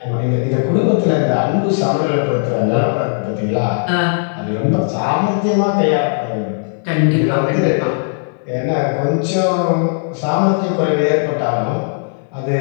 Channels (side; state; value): right; silent; 65 dB below the other